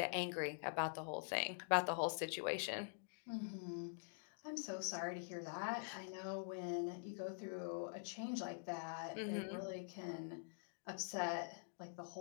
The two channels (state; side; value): silent; right; digital silence